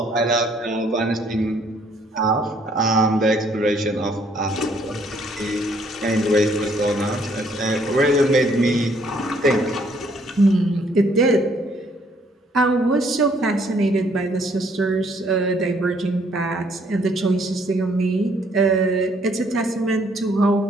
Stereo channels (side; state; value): both; normal; correlation 0.65